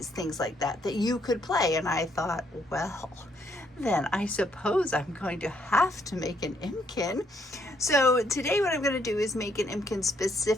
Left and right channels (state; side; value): normal; both; correlation 0.71